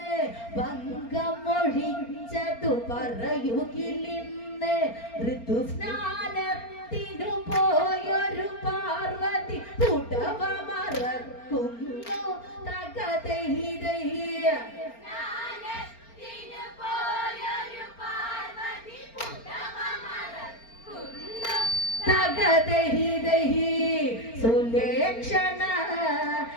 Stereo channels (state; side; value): late; right; 4.4 ms